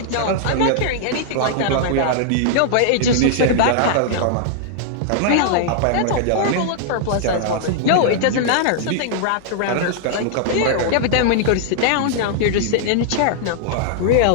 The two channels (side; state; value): both; different; correlation -0.01